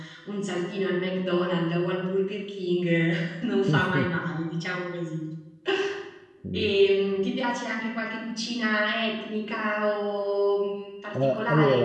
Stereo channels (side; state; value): both; identical; correlation 1.00